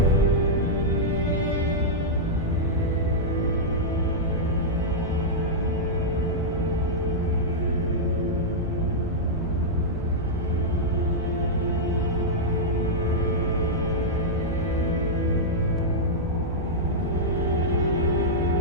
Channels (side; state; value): both; normal; correlation -0.07